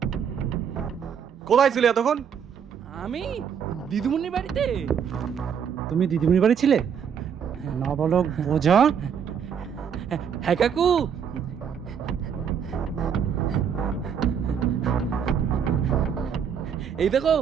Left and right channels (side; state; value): left; quieter; 7.6 dB